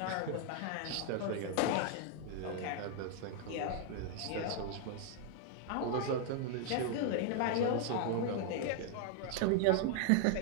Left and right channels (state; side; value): different; both; correlation 0.00